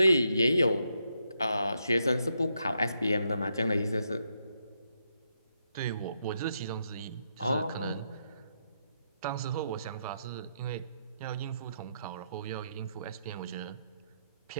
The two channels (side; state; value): both; inverted; correlation -0.80